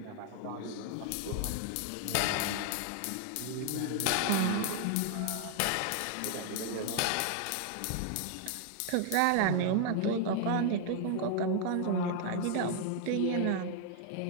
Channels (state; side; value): different; both; correlation 0.00